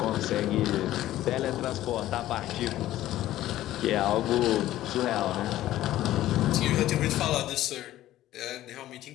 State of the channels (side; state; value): right; quieter; 14.2 dB